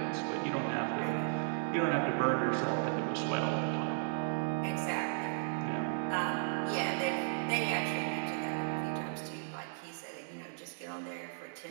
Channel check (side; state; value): left; silent; digital silence